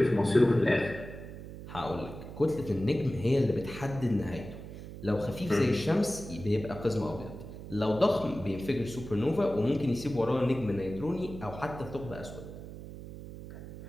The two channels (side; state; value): right; noise; hum, 12 dB below the sound